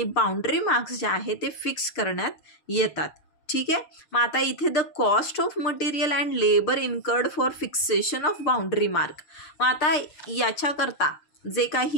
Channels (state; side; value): late; right; 6.4 ms